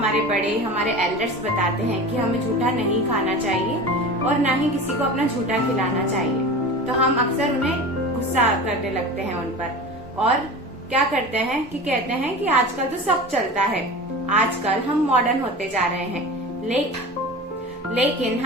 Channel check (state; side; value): normal; both; correlation 0.33